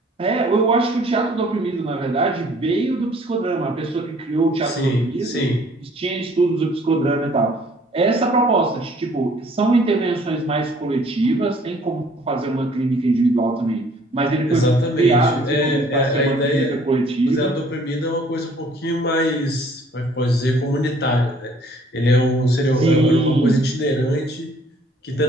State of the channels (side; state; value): both; normal; correlation 0.58